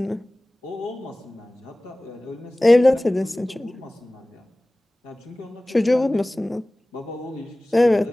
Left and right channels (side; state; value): both; normal; correlation 0.98